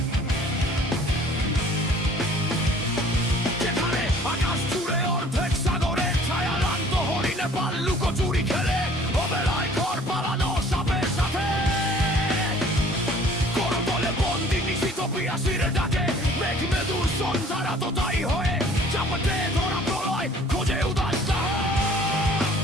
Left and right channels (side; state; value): both; normal; correlation 0.53